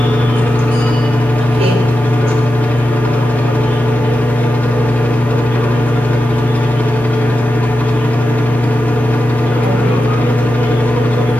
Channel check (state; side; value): normal; both; correlation 0.90